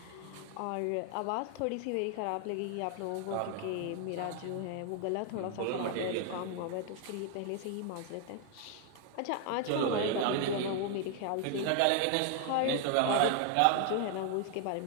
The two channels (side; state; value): both; different; correlation 0.00